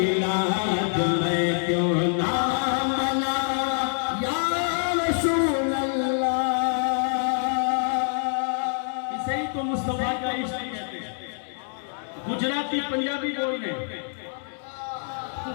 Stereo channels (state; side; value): silent; right; 56 dB below the other